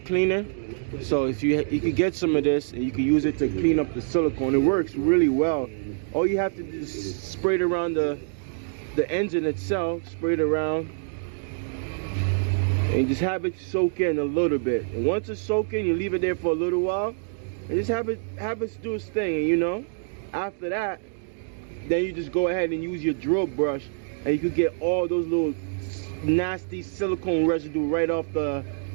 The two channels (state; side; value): silent; left; digital silence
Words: So if you could get some of this and you can use it to clean up the silicone. It works really well. All you have to do is spray it around the engine itself, spray it around, and just have it soak in a little bit. And once it's soaked in, you leave it there for a little while, and just have it do its thing. And you know, after that, then you just go ahead and use your drill brush, and you could get all those little nasty silicone residue right off the